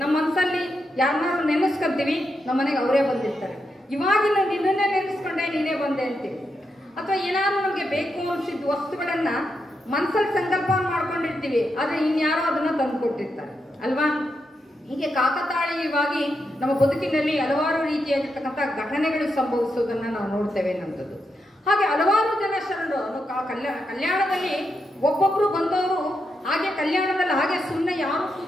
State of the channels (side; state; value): both; normal; correlation 0.84